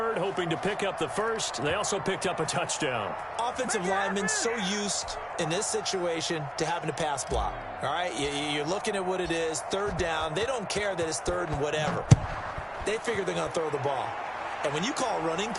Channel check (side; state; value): both; identical; correlation 1.00